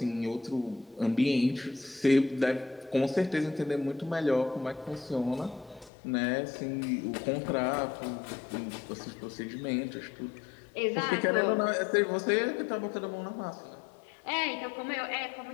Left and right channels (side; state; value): right; drops out; at 5.9 s